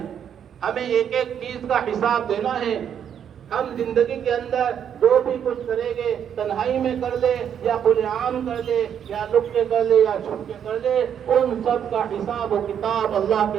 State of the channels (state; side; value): quieter; left; 8.7 dB